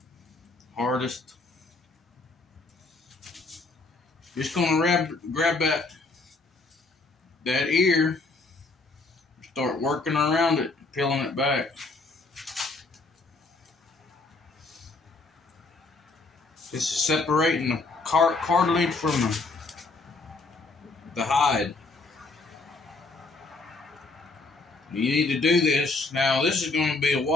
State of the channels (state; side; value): quieter; right; 3.6 dB